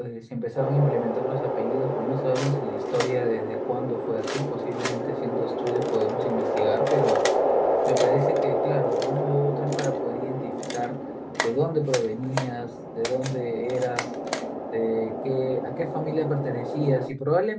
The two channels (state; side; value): identical; both; correlation 1.00